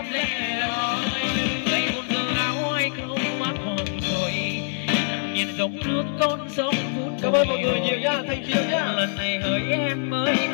lẻ loi ngày một giờ áo ai không mắt hồn rồi nhìn dòng nước con sông vút cảm ơn mọi người nhiều nha, thank you nhá. lần này hỡi em mới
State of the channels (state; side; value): silent; right; digital silence